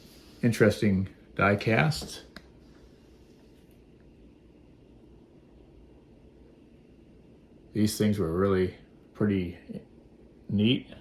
interesting die casts. These things were really pretty neat.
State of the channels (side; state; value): both; identical; correlation 1.00